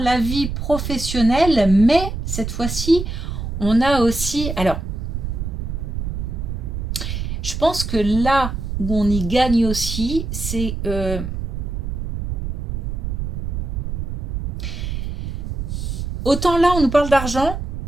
vie professionnelle, mais cette fois-ci, on a aussi... Alors, je pense que là où on y gagne aussi, c'est... autant là, on nous parle d'argent,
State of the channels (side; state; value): right; noise; rumble, 4 dB below the sound